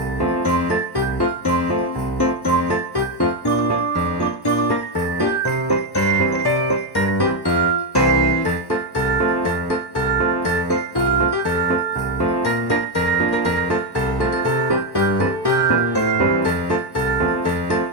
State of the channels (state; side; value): late; right; 1.1 ms